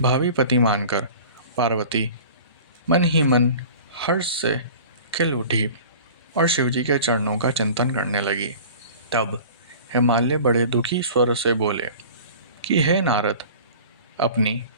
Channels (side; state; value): both; inverted; correlation -0.42